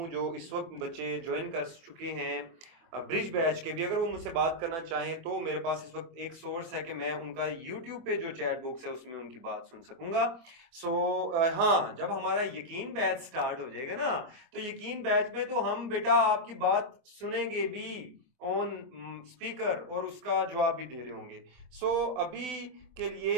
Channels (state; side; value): late; left; 24 ms